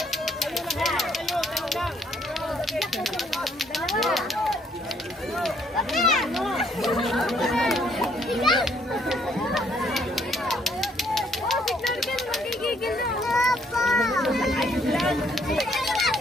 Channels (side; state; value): both; normal; correlation 0.67